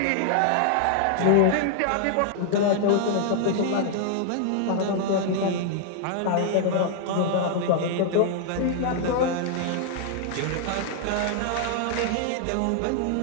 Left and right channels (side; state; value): both; different; correlation 0.00